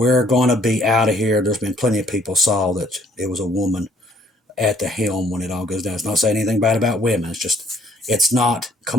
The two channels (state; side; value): normal; both; correlation 0.63